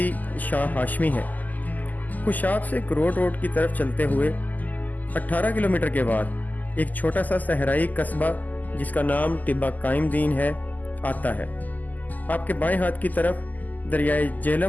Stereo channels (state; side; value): late; right; 0.082 ms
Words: शाह हाशमी है। खुशाब से करोड़ रोड की तरफ चलते हुए 18 किलोमीटर के बाद एक छोटा सा सहराई कस्बा जिसका नाम टिब्बा कायम दीन है आता है। आपके बाएं हाथ की तरफ दरियाए